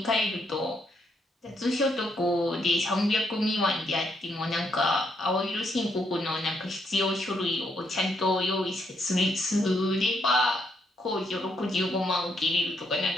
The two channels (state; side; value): normal; both; correlation 0.75